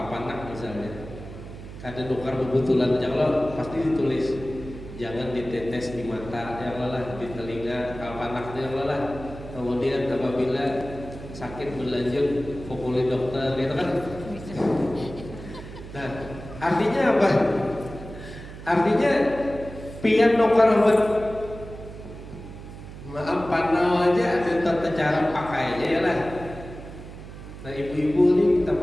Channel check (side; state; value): right; noise; hum, 13 dB below the sound